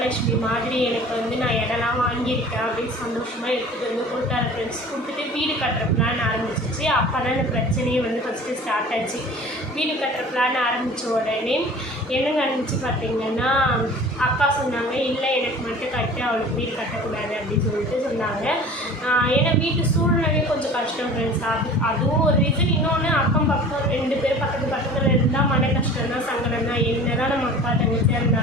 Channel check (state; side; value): normal; both; correlation 0.43